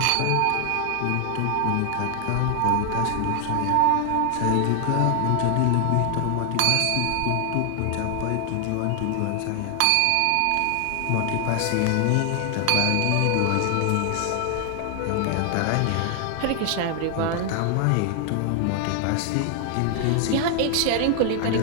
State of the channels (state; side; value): different; both; correlation 0.00